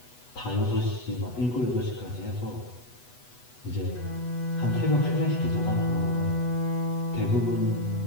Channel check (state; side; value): late; right; 8.1 ms